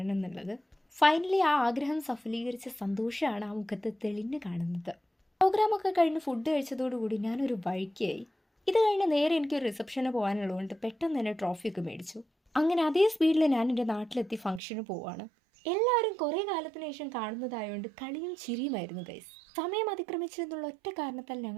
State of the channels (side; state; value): left; drops out; at 14.6 s